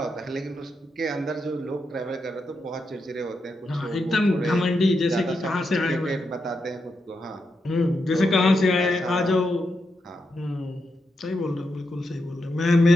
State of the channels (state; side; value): normal; both; correlation 0.84